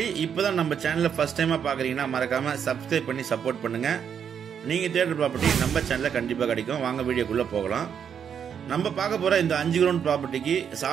இப்பதான் நம்ம சேனலை ஃபர்ஸ்ட் டைமா பாக்குறீங்கன்னா மறக்காம சப்ஸ்கிரைப் பண்ணி சப்போர்ட் பண்ணுங்க. நீங்க தேடுற ப்ராப்பர்ட்டி நம்ம சேனல்ல கண்டிப்பா கிடைக்கும். வாங்க வீடியோக்குள்ள போகலாம். நம்ம பார்க்க போற இந்த 5 கிரவுண்ட் ப்ராப்பர்ட்டிக்கு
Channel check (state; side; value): quieter; left; 7.9 dB